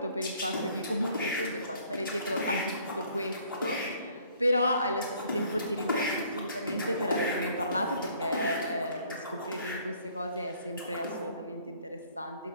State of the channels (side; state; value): both; inverted; correlation -0.59